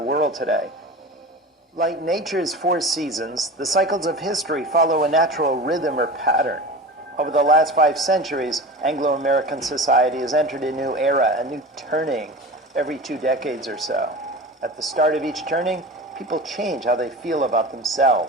world today. Like nature's 4 seasons, the cycles of history follow a natural rhythm or pattern. Over the last 5 centuries, Anglo-American society has entered a new era, a new turning every 2 decades or so. At the start of each turning, people change how they feel about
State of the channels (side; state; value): both; normal; correlation 0.32